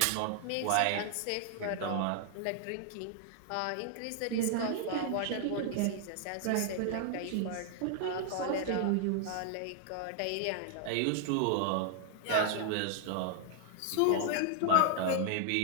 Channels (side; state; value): both; different; correlation 0.00